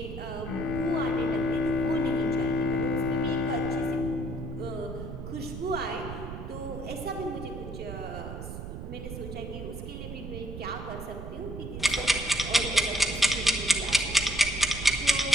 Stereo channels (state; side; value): noise; right; rumble, 8 dB below the sound